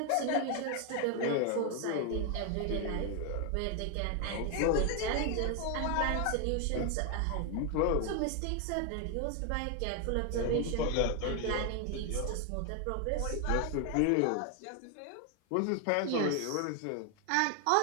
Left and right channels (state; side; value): different; both; correlation 0.00